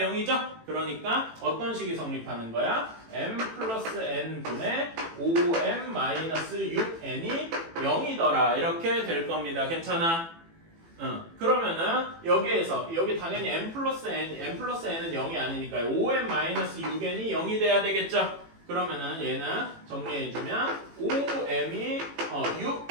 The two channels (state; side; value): late; left; 18 ms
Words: 그러니까 어떤 식이 성립하는 거야? m 플러스 n분의 5m 마이너스 6n이 0이더라. 이렇게 될 겁니다. 괜찮아? 그러면은 여기에서 여기 당연히 m 플러스 n은 0이 아니니까 5m 마이너스 6n이 0이 돼야 되겠죠? 그러면은 얘는 정리해주면 5m이